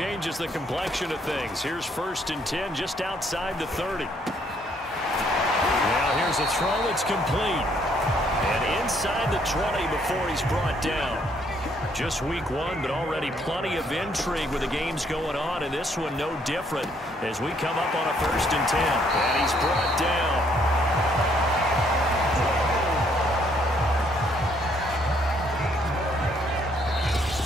the complexion of things. Here's 1st and 10 just outside the 30. Now here's a throw that's complete. And inside the 20 before he's brought down. Just week 1, but already plenty of intrigue with the games going on, and this one no different as we come up on a 1st and 10. And he's brought down.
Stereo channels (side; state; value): both; normal; correlation 0.68